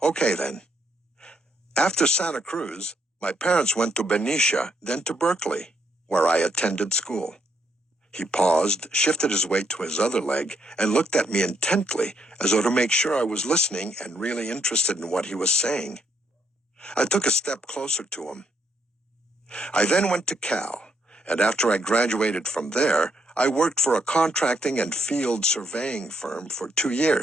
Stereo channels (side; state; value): both; normal; correlation 0.74